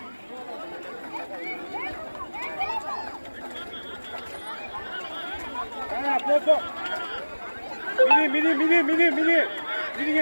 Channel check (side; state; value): both; inverted; correlation -1.00